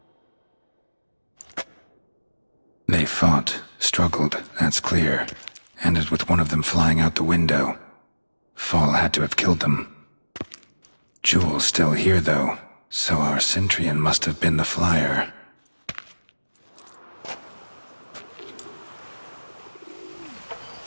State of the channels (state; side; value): inverted; both; correlation -1.00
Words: They fought, struggled, that's clear. Ended with one of them flying out the window. Fall had to have killed them. Jewel's still here, though, so our Cintrian must have been the flyer.